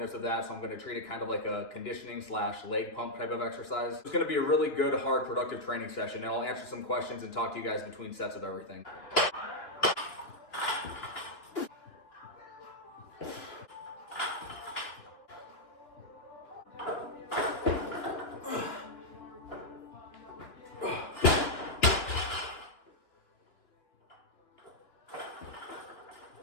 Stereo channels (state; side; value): late; right; 2.9 ms